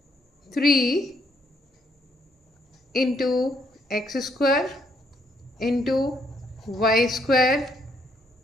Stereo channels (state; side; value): normal; both; correlation 0.72